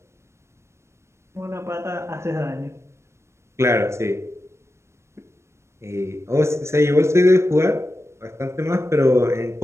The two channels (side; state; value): left; late; 0.13 ms